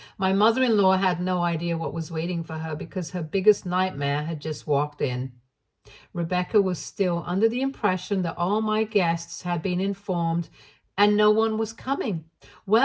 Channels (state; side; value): identical; both; correlation 1.00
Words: My mother-in-law had no idea what was waiting for her because her biggest nightmare had just walked in. Rebecca was still under the impression that all my guests had been informed and no one was coming.